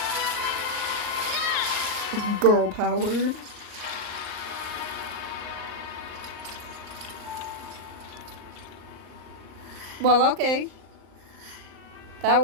Girl power. Well, okay. That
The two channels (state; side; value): late; left; 38 ms